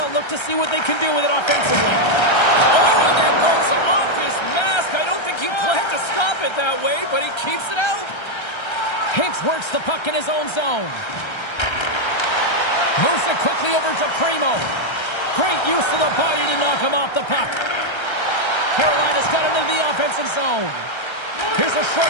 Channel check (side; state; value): right; late; 1.3 ms